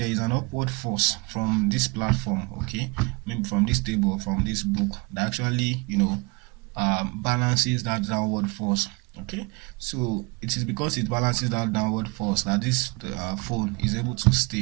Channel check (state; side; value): quieter; left; 27.3 dB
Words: is an upward force from this platform, okay, maybe from this table or from this book, that actually, you know, balances that downward force. Okay, so it is because it balances that downward force that this phone is able to